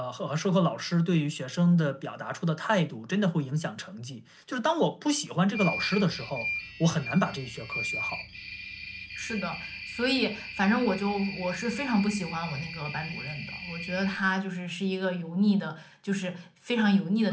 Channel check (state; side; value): identical; both; correlation 1.00